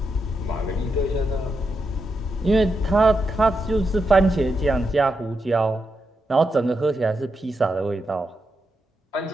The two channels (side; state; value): both; normal; correlation 0.85